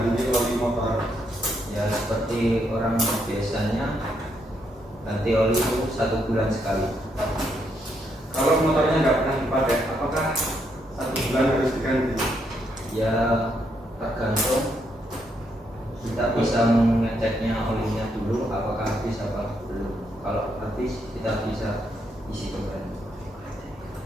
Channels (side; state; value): both; normal; correlation 0.77